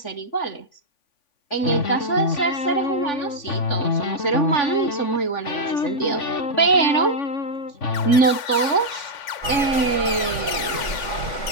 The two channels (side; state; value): right; late; 3.5 ms